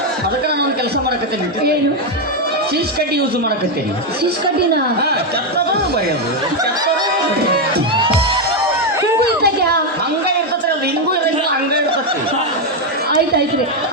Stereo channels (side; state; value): both; normal; correlation 0.04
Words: ಅದಕ್ಕೆ ನಾನು ಒಂದು ಕೆಲಸ ಮಾಡಕತ್ತೇನೆ. ಏನು? ಸೀಸ್ ಕಡ್ಡಿ ಯೂಸ್ ಮಾಡಕತ್ತೇನೆ. ಸೀಸ್ ಕಡ್ಡಿನ ಚತ್ತದ ಬರೆಯೋದು ಹಿಂಗೂ ಇದ್ದಾಗ್ಯಾ? ಹಂಗ ಇರ್ತತ್ರಿ, ಅದು ಹಿಂಗೂ ಇರಂಗಿಲ್ಲ, ಹಂಗ ಇರ್ತತಿ. ಆಯ್ತಾಯ್ತ್ರಿ.